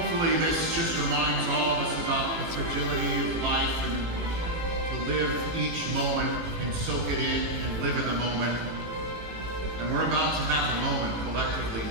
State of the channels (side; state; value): left; late; 18 ms